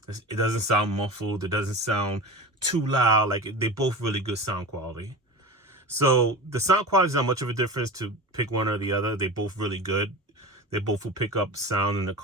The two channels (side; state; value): both; normal; correlation 0.31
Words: It doesn't sound muffled. It doesn't sound too loud. Like, they both really good sound quality. So the sound quality is not much of a difference to pick one or the other. They both really good. They both will pick up sound in the